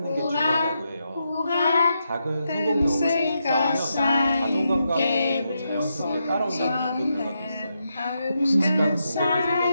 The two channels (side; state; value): both; inverted; correlation -0.84